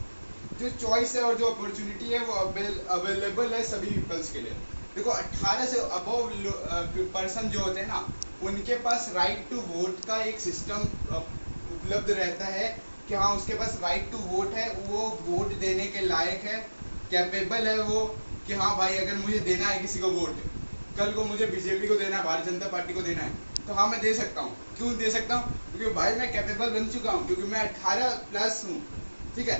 जो चॉइस है और जो अपॉर्चुनिटी है वो अवेलेबल है सभी पीपल्स के लिए। देखो 18 से अबव पर्सन जो होते हैं ना, उनके पास राइट टू वोट का एक सिस्टम उपलब्ध रहता है कि हाँ उसके पास राइट टू वोट है, वो वोट देने के लायक है, कैपेबल है वो, कि हाँ भाई अगर मुझे देना है किसी को वोट, कल को मुझे बीजेपी को देना है, भारतीय जनता पार्टी को देना है, तो हाँ मैं दे सकता हूँ। क्यों दे सकता हूँ? क्योंकि भाई मैं कैपेबल बन चुका हूँ, क्योंकि मैं 18+ हूँ, ठीक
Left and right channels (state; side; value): inverted; both; correlation -1.00